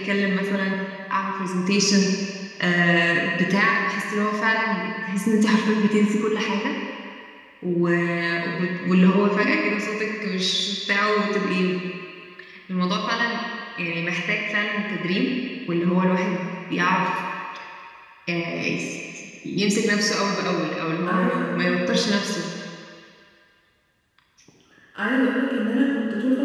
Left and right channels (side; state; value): both; identical; correlation 1.00